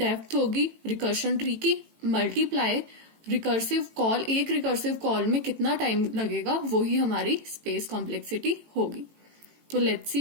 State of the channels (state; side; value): late; left; 18 ms